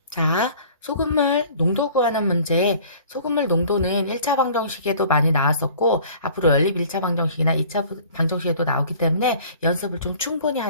자, 소금물 농도 구하는 문제. 소금물 농도는 1차 방정식에도 많이 나왔었고, 앞으로 연립 1차 방정식이나 2차 방정식에도 나오기 때문에 연습을 좀 충분히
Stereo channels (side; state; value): both; inverted; correlation -0.49